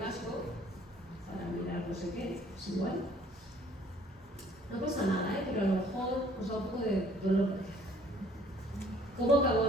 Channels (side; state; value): both; normal; correlation 0.58